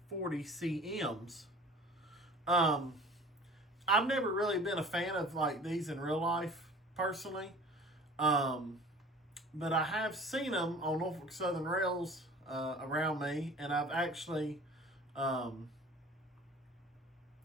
40 CMs. I've never really been a fan of like these in real life personally, but I have seen them on Norfolk Southern rails around me, and I've actually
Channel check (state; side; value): normal; both; correlation 0.44